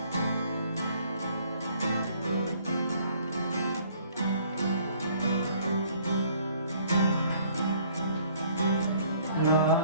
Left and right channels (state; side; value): inverted; both; correlation -0.59